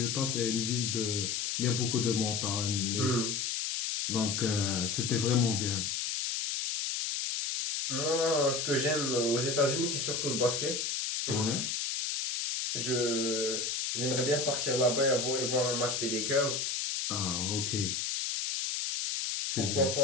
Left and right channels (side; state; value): left; noise; hiss, 1 dB below the sound